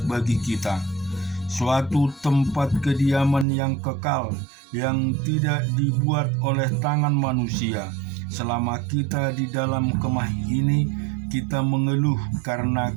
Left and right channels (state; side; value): drops out; left; at 3.5 s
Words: bagi kita, suatu tempat kediaman yang kekal, yang tidak dibuat oleh tangan manusia. Selama kita di dalam kemah ini, kita mengeluh karena